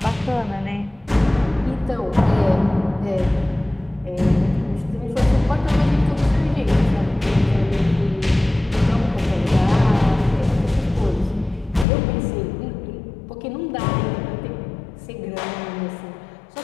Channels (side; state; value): right; drops out; at 11.9 s